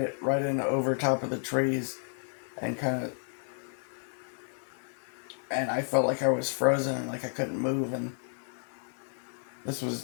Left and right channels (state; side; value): silent; right; 57 dB below the other